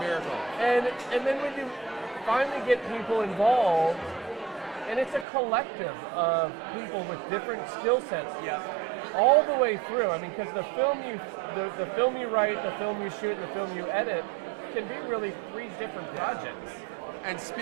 miracle. And then when you finally get people involved, and it's a collective of people with different skill sets, all the way through. I mean, because the film you write, the film you shoot, and the film you edit can be really 3 different projects. And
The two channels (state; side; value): drops out; left; at 5.2 s